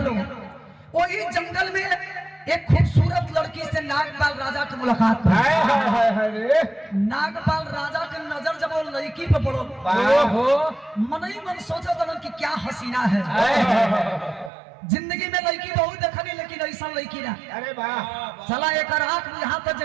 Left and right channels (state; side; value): drops out; left; at 14.5 s